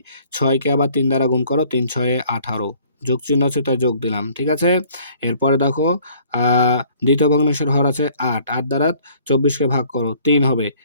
6 কে আবার 3 দ্বারা গুণ করো, 3 6 এ 18, যোগ চিহ্ন আছে, তাই যোগ দিলাম। ঠিক আছে? এরপরে দেখো দ্বিতীয় ভগ্নাংশের হর আছে 8, 8 দ্বারা 24 কে ভাগ করো, 3 হবে,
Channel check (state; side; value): inverted; both; correlation -0.57